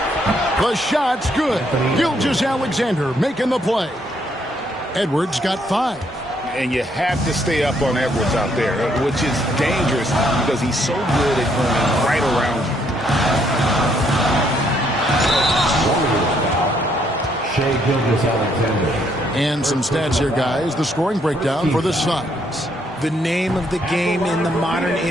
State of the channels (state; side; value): normal; both; correlation 0.71